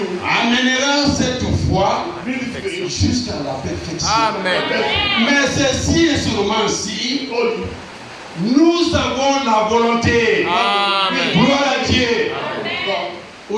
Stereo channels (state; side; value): identical; both; correlation 1.00